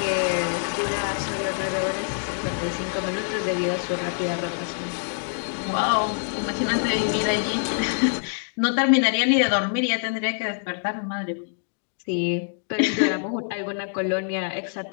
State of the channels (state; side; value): silent; right; digital silence